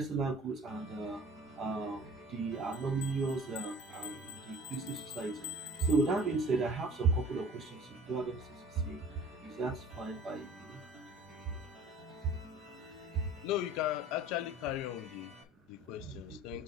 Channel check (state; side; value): normal; both; correlation 0.46